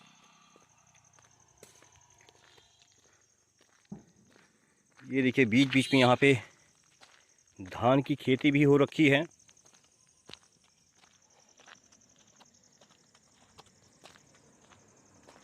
ये देखिए बीच बीच में यहाँ पे धान की खेती भी हो रखी है।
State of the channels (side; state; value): both; identical; correlation 1.00